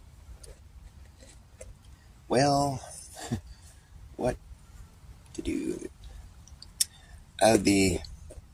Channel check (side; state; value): both; identical; correlation 1.00